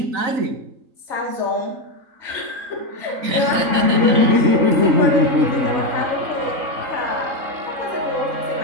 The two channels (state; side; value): late; left; 4.0 ms